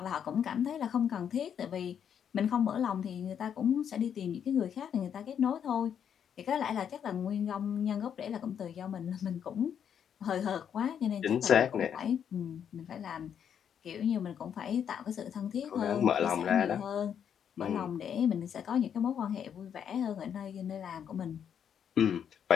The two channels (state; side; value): quieter; right; 8.4 dB